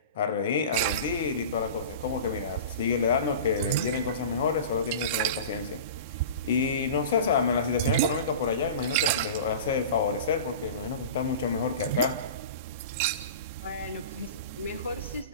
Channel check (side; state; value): both; inverted; correlation -0.34